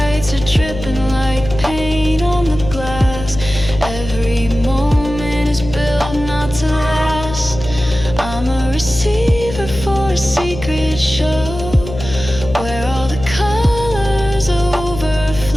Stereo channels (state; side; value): noise; left; hum, 10 dB below the sound